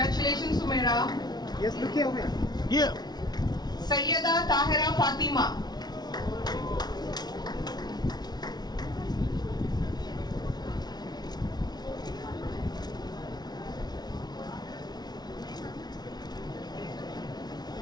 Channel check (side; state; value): right; late; 0.19 ms